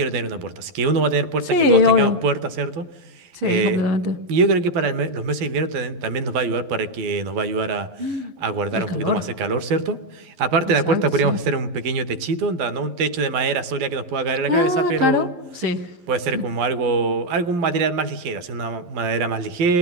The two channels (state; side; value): late; left; 11 ms